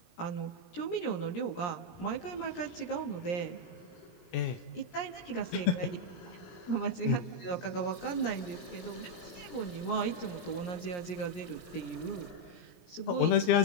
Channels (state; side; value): late; right; 17 ms